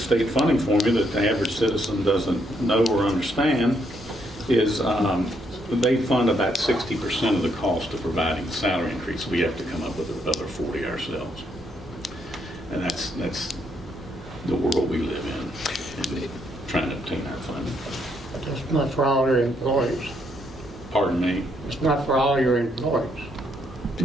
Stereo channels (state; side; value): normal; both; correlation 0.74